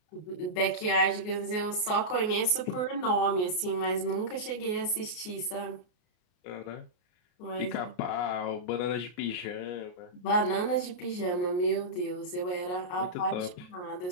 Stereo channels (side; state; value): right; late; 33 ms